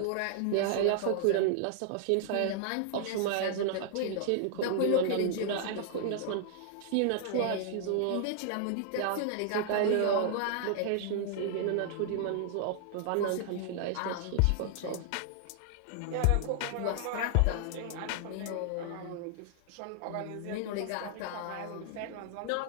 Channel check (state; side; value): different; both; correlation -0.01